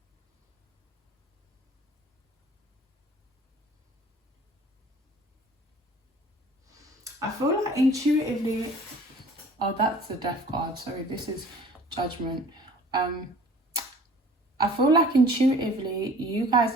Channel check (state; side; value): normal; both; correlation 0.49